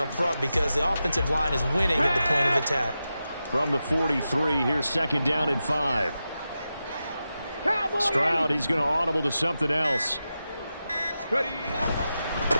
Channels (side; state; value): both; inverted; correlation -0.91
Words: front because the offensive line is winning at the point of attack. From the 43, here's 2nd down and 5. Stroud, he's going to audible to something else. Ready?